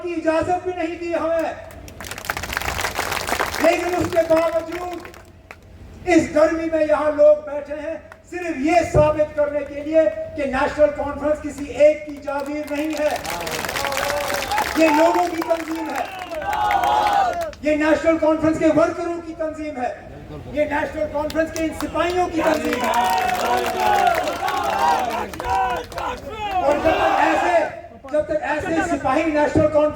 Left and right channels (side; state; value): both; identical; correlation 1.00